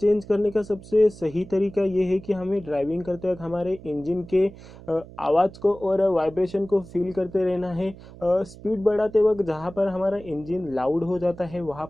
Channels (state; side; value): noise; right; hum, 18 dB below the sound